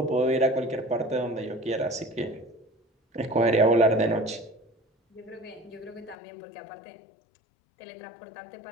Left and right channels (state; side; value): drops out; right; at 6.2 s